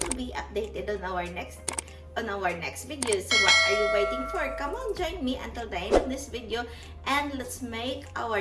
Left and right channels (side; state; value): both; identical; correlation 1.00